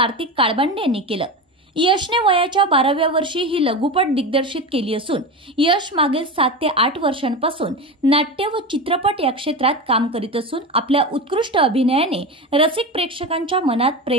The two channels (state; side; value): normal; both; correlation 0.23